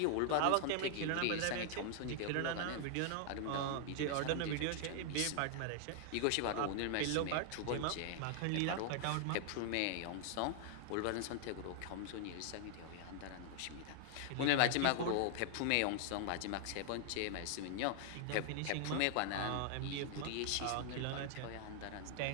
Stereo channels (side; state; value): both; different; correlation 0.00